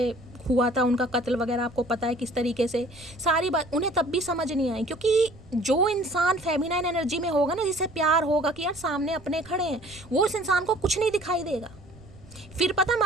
हुआ था उनका कत्ल वगैरह, आपको पता है किस तरीके से, सारी बात उन्हें तब भी समझ नहीं आई। क्योंकि जो इंसान फेमिनाइन एनर्जी में होगा ना, जिसे प्यार होगा कि यार सामने अपने खड़े हैं, वो इस इंसान को कुछ नहीं दिखाई देगा। फिर पता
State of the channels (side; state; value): right; noise; rumble, 23 dB below the sound